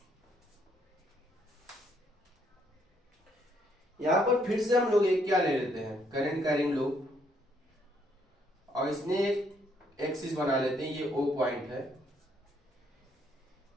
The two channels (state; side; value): normal; both; correlation 0.70